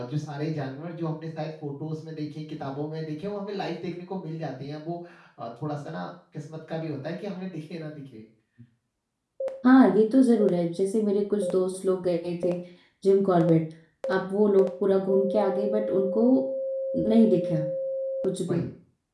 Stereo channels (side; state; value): both; identical; correlation 1.00